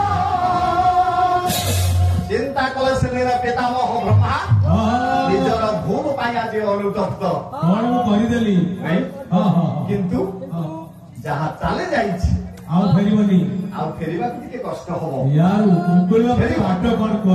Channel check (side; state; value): both; identical; correlation 1.00